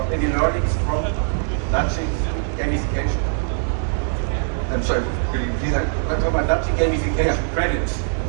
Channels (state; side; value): silent; left; digital silence